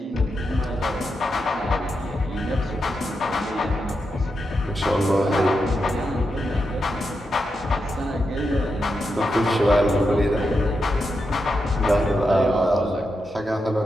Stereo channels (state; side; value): normal; both; correlation 0.86